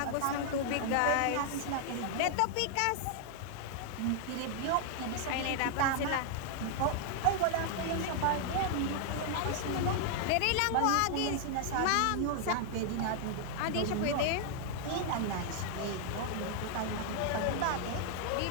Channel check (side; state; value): both; different; correlation 0.00